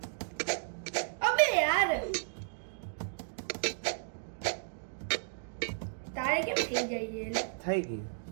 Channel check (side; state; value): left; silent; digital silence